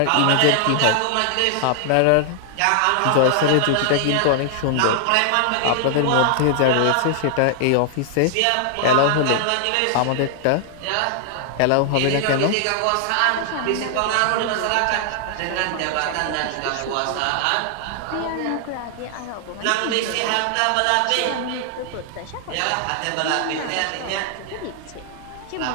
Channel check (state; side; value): different; both; correlation 0.00